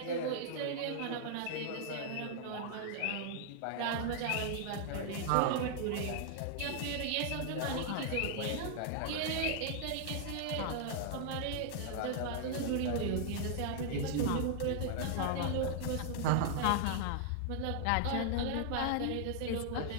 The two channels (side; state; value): both; different; correlation -0.01